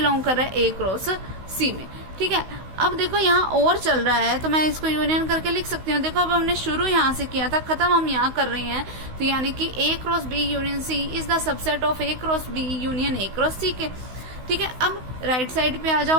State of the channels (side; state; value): left; late; 16 ms